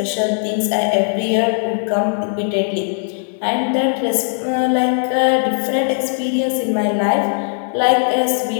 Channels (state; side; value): silent; right; 67 dB below the other